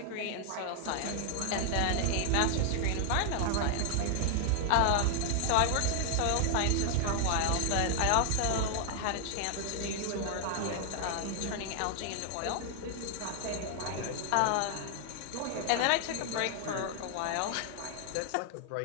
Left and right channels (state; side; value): different; both; correlation 0.00